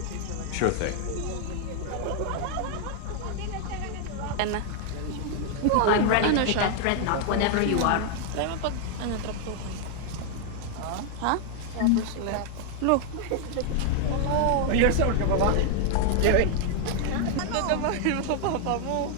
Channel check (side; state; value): both; different; correlation 0.00